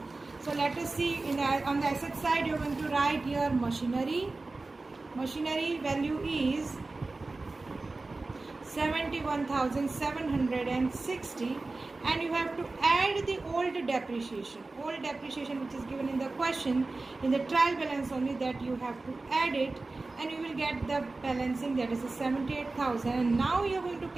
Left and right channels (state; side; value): quieter; left; 3.4 dB